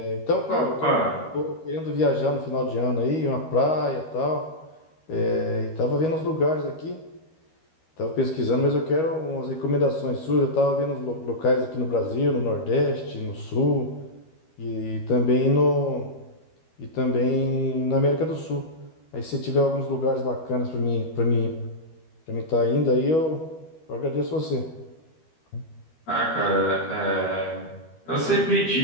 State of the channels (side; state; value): right; late; 13 ms